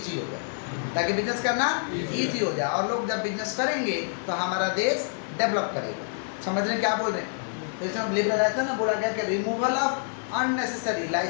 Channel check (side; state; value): right; silent; digital silence